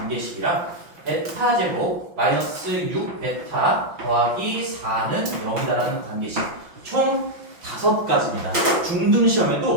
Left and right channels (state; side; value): late; left; 5.9 ms